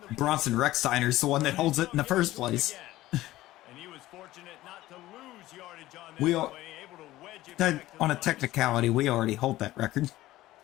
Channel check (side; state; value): right; quieter; 16.2 dB